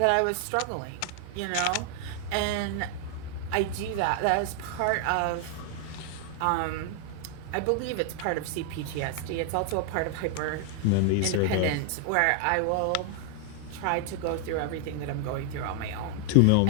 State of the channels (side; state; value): both; different; correlation 0.00